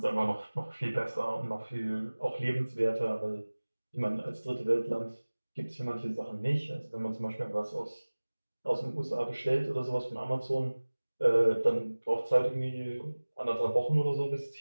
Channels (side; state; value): both; inverted; correlation -1.00